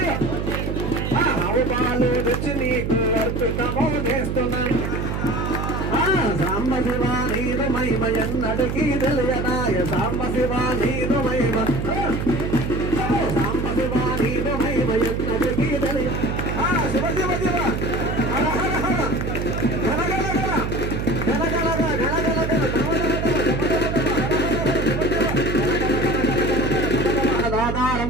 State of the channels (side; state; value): right; noise; hum, 2 dB below the sound